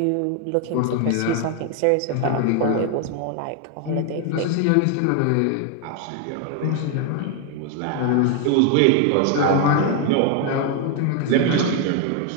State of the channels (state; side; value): different; both; correlation 0.01